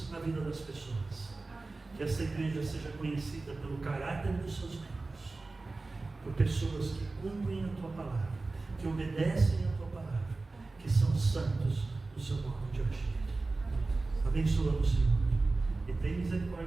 na vida das pessoas, que esta igreja seja conhecida pelo caráter dos seus membros, por pessoas que cumprem a Tua palavra, que obedecem a Tua palavra, que são santos no seu modo de agir. Abençoa-nos, Senhor, e tem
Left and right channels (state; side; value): quieter; left; 3.5 dB